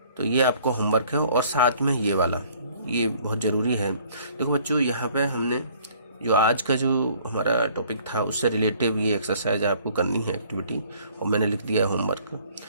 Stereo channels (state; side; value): inverted; both; correlation -0.57